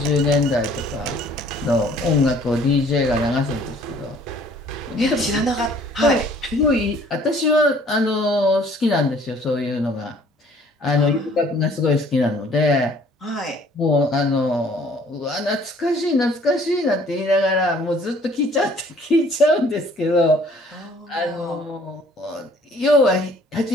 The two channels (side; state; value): both; normal; correlation 0.56